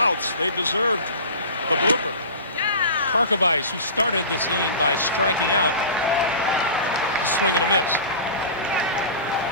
They deserved the blooper. Karkovice, who started this inning by striking out, a swing and a miss.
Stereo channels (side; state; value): both; inverted; correlation -0.34